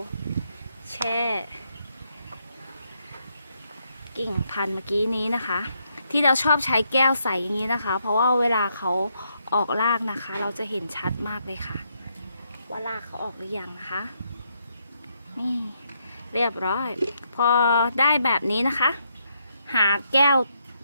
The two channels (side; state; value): both; inverted; correlation -0.77